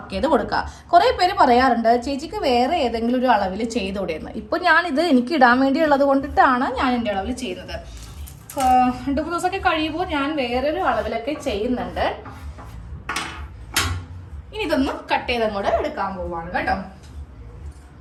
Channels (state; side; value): identical; both; correlation 1.00